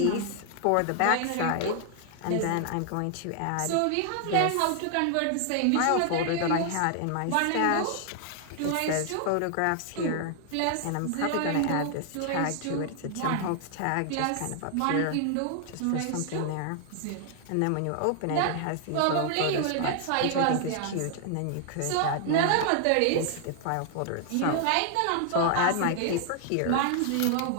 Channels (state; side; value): different; both; correlation 0.00